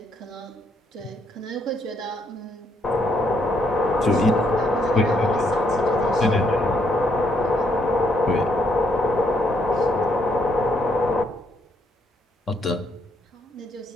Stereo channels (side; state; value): both; normal; correlation 0.73